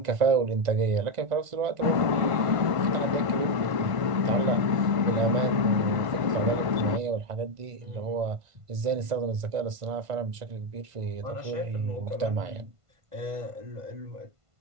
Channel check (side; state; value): left; late; 1.5 ms